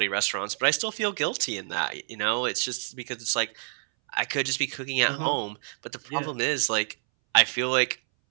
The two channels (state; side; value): silent; left; 60 dB below the other